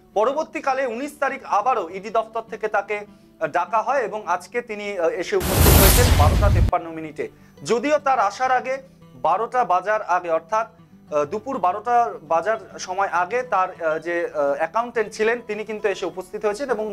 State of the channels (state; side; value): identical; both; correlation 1.00